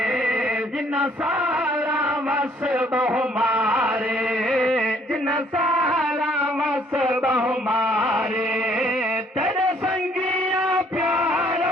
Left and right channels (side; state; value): both; normal; correlation 0.63